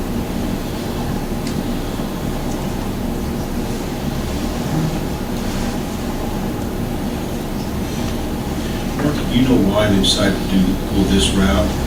You know why they decided to go this route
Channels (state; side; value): identical; both; correlation 1.00